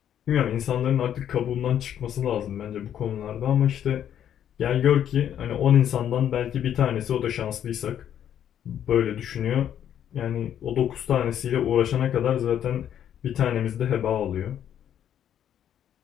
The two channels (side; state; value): right; quieter; 9.9 dB